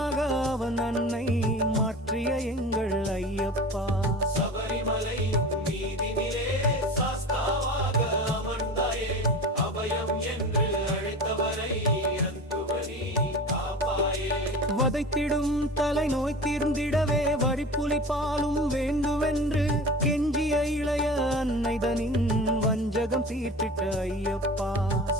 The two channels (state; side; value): normal; both; correlation 0.34